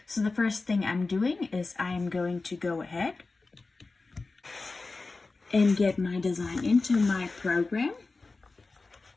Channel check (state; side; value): quieter; right; 3.7 dB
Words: So the first thing I'm doing is I am going to go ahead and get my design into my program.